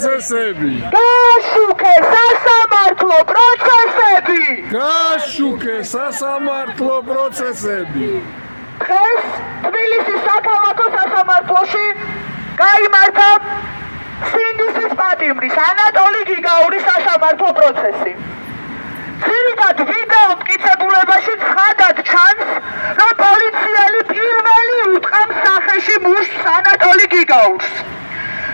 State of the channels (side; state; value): both; inverted; correlation -1.00